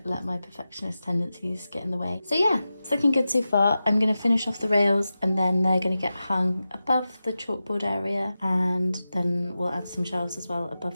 let my perfectionist tendencies get in the way. So yeah, it's looking good so far. I'm going to finish off the rails and then they're going to get hung above the chalkboard area, and then we'll add some shelves as well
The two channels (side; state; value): both; inverted; correlation -0.93